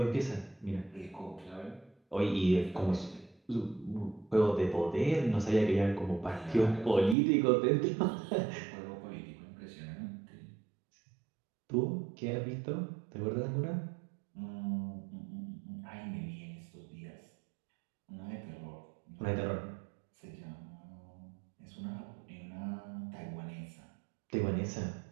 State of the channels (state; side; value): drops out; left; at 7.2 s